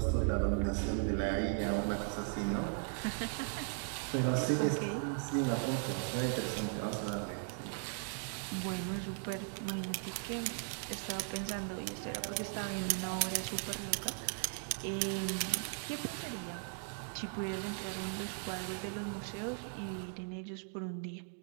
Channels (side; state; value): left; silent; 53 dB below the other